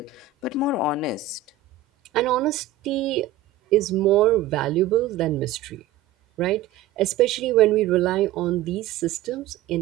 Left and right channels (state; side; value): quieter; left; 10.3 dB